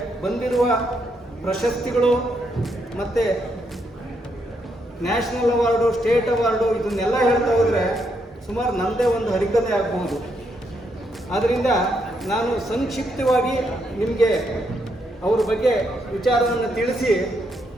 ಬಂದಿರುವ ಪ್ರಶಸ್ತಿಗಳು ಮತ್ತು ನ್ಯಾಷನಲ್ ಅವಾರ್ಡು, ಸ್ಟೇಟ್ ಅವಾರ್ಡು ಇದನ್ನೆಲ್ಲ ಹೇಳ್ತಾ ಹೋದರೆ ಸುಮಾರು ನನ್ನದೇ ಒಂದು ಹರಿಕತೆ ಆಗ್ಬೋದು. ಆದ್ದರಿಂದ ನಾನು ಸಂಕ್ಷಿಪ್ತವಾಗಿ ನಿಮಗೆ ಅವ್ರ ಬಗ್ಗೆ ವಿಚಾರವನ್ನು ತಿಳಿಸಿ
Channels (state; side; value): normal; both; correlation 0.77